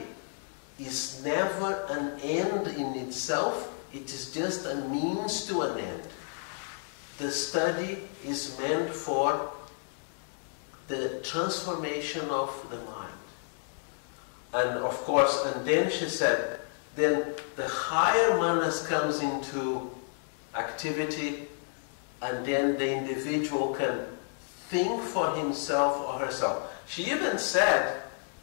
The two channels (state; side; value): silent; right; 57 dB below the other